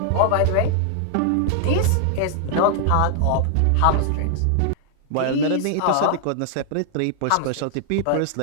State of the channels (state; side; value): different; both; correlation 0.00